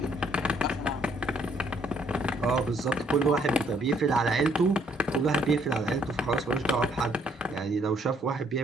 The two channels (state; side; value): normal; both; correlation 0.67